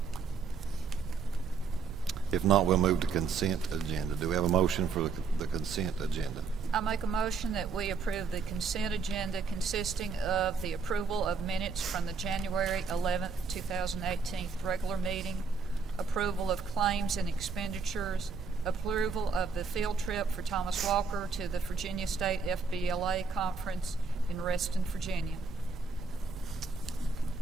If not, we'll move to consent agenda. Do we have a motion for the consent agenda? I make a motion that we approve the consent agenda consisting of the approval of minutes from the January 11th, 2018 regular meeting, approval of claims and expenditures, approval of the field trip for Thomas Walker to the Virginia State FBLA Conference in Reston, Virginia.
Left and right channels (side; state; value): left; quieter; 4.9 dB